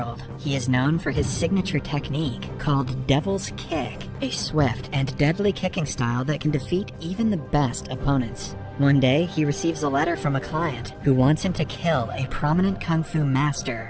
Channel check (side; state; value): both; identical; correlation 1.00